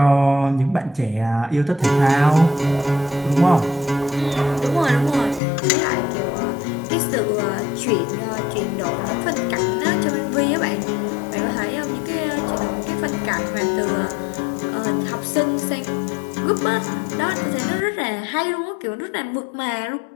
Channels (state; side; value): drops out; right; at 5.4 s